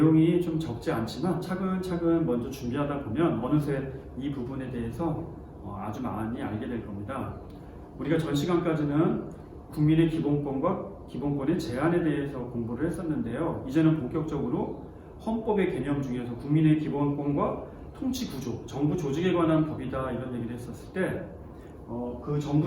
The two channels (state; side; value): identical; both; correlation 1.00